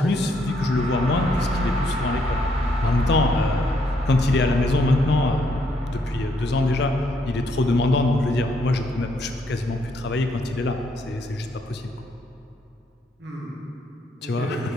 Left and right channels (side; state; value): both; normal; correlation 0.72